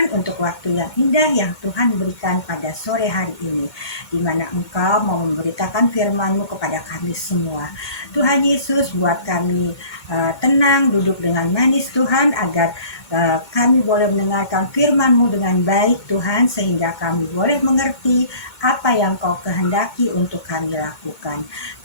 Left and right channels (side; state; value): right; late; 2.2 ms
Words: untuk waktu yang indah yang Tuhan berikan pada sore hari ini, di mana Engkau mau memberitakan firman-Mu kepada kami semua. Tuhan Yesus, buat kami tenang, duduk dengan manis Tuhan, agar kami boleh mendengarkan firman-Mu dengan baik Tuhan, sehingga kami boleh mengerti apa yang Kau kehendaki untuk kami lakukan.